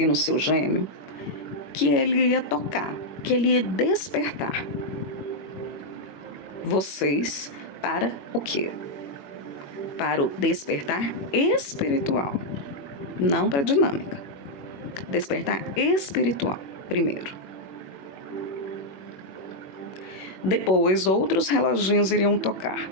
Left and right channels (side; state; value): right; late; 21 ms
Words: no seu gêmeo que ele ia tocar, que ele ia despertar vocês para o quê? Para o despertar espiritual, não para a dinâmica. Despertar espiritual, primeiro. Depois, outros reloginhos iriam tocar.